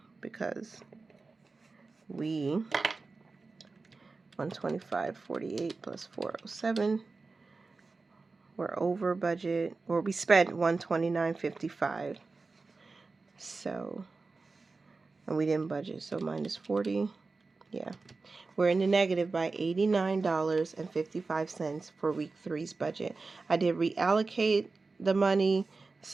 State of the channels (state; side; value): quieter; left; 3.9 dB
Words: because we 125.48 plus 407. We're over budget, or we spent 129.55. So, and we didn't budget, so minus 40. Yeah, we're in the negative by $89.55 for week 3's budget. I did reallocate the money,